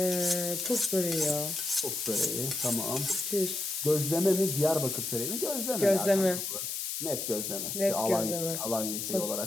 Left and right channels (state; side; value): noise; left; hiss, 4 dB below the sound